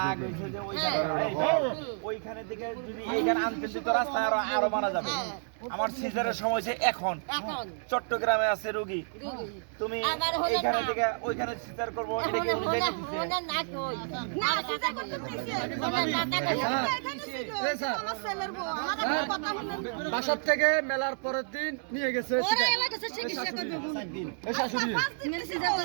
হইছে যে ওই ওইখানে থেকে যদি এইখানে আনতে দিত রাস্তা আরো মারা যাবে। আমার সিজারের সময় হইছে এখন চট্টগ্রামে আছে রোগী তুমি এইখানে থেকে ওইখানে সিজার করব এটা কি উনি দেখে দিছে না কই না সিজার করতে দিছে আমার ছেলের বউ আমার কথা শুনুন বাসা থেকে মেলার পরের দিন নিয়ে গেছে ওরা এলাকাতে চিকিৎসা করবে এই শাশুড়ি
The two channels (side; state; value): left; silent; digital silence